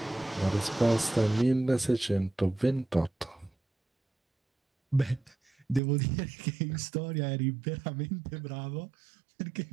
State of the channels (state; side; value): drops out; left; at 5.8 s